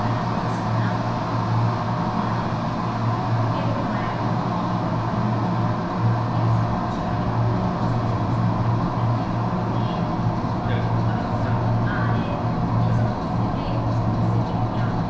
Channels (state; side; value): identical; both; correlation 1.00